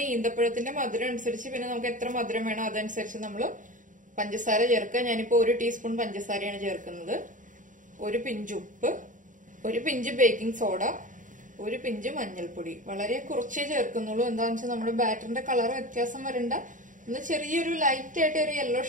ഈന്തപ്പഴത്തിന്റെ മധുരം അനുസരിച്ച്, പിന്നെ നമുക്ക് എത്ര മധുരം വേണോ അതനുസരിച്ച് നമ്മൾ പഞ്ചസാര ചേർക്കുക. ഞാനിപ്പോ 1 ടീസ്പൂൺ പഞ്ചസാരയാണ് ചേർക്കുന്നത്. 1 പിഞ്ച് ഉപ്പ്, 1 പിഞ്ച് ബേക്കിംഗ് സോഡ, 1 പിഞ്ച് മഞ്ഞൾപ്പൊടി. വളരെ കുറച്ചേ ചേർക്കുന്നുള്ളൂ. എന്താണെന്ന് വെച്ചാൽ നമ്മുടെ ബാറ്ററിന്റെ കളർ വ്യത്യാസം വരണ്ട, ഒന്ന് ചെറിയൊരു ലൈറ്റ് ആയിട്ട് ഒരു യെല്ലോ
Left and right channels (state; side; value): late; left; 0.38 ms